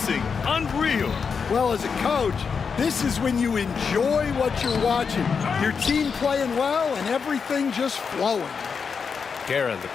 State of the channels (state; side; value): quieter; right; 5.8 dB